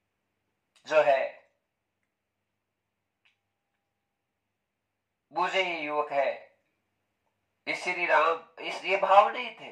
जो है मुझे ये युवक है, इस श्री राम, इस ये भाव नहीं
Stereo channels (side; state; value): both; identical; correlation 1.00